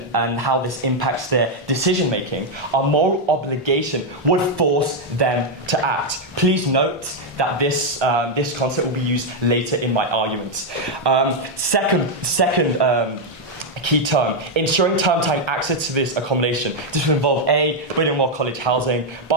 and how this impacts their decision-making, a moral obligation would force them to act. Please note that this concept will be used later in my arguments. Second key term, ensuring term time access to this accommodation. This will involve A, building more college housing,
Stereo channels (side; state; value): both; normal; correlation 0.01